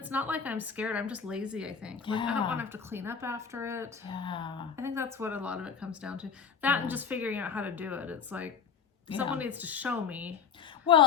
not like I'm scared. I'm just lazy. I think. Like I don't want to have to clean up after it. Yeah. I think that's what a lot of it comes down to. That and just figuring out how to do it. It's like someone needs to show me.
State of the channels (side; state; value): right; quieter; 6.6 dB